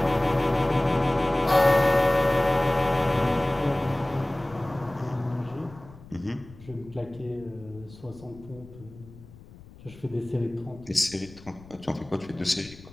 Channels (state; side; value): noise; left; rumble, 20 dB below the sound